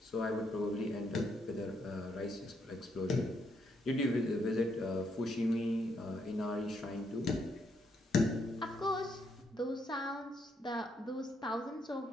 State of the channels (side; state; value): both; normal; correlation 0.75